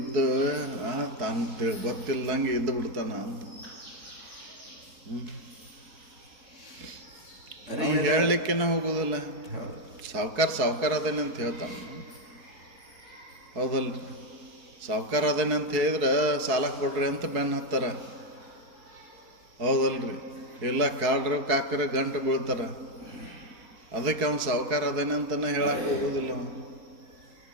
ತಾನು ಗೊತ್ತಿಲ್ದಂಗೆ ಇದ್ದು ಬಿಡ್ತಾನ ಅಂತ ಹೇಳಲಿಕ್ಕೇನೆ ಹೋಗೋದಿಲ್ಲ. ಸಾವ್ಕಾರ ಅದೇನೆ ಅಂತ ಹೇಳ್ತಾನೆ. ಹೌದಲ್ರಿ, ಸಾವ್ಕಾರ ಅದೇನೆ ಅಂತ ಹೇಳಿದ್ರೆ ಸಾಲ ಕೊಡ್ರಿ ಅಂತ ಬೆನ್ನು ಹತ್ತಾರ. ಹೌದಲ್ರಿ, ಇಲ್ಲ ಕಾಡ್ರ ಕಾಕ್ರ ಗಂಟು ಬೀಳ್ತಾರ. ಅದಕ್ಕೆ ಅವ್ನು ಸಾವ್ಕಾರ ಅದೇನೆ ಅಂತಲೇ ಹೇಳಕ್ಕೆ ಹೋಗೋದಿಲ್ಲ.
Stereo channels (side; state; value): left; late; 4.2 ms